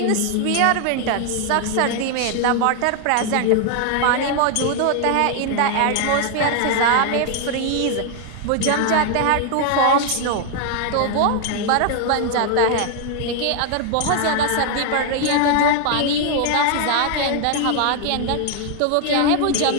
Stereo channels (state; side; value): different; both; correlation 0.00